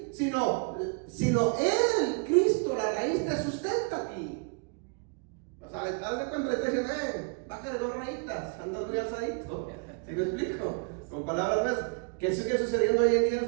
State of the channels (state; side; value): quieter; left; 34.4 dB